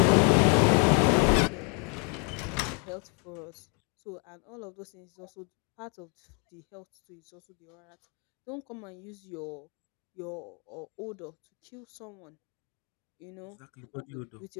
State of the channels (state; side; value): quieter; right; 35.7 dB